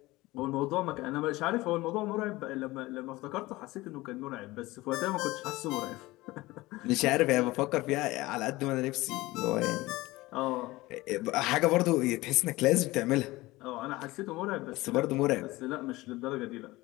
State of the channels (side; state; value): right; quieter; 19.7 dB